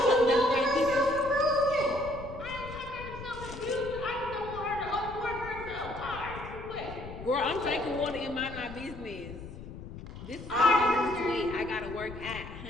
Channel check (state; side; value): noise; left; rumble, 12 dB below the sound